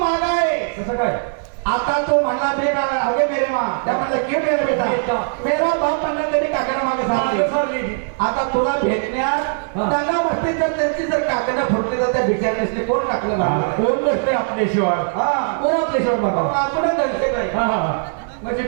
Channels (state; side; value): silent; left; digital silence